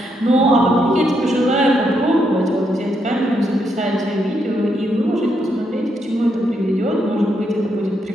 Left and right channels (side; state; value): both; normal; correlation 0.78